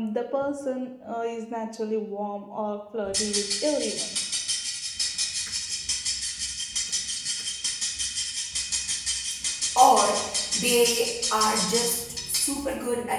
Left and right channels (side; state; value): both; identical; correlation 1.00